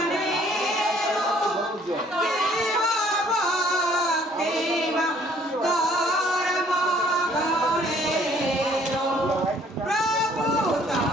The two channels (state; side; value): normal; both; correlation 0.60